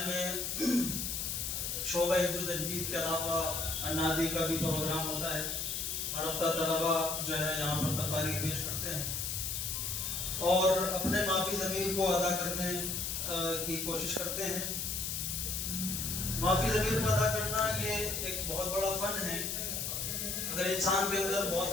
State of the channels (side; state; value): left; noise; hiss, 2 dB below the sound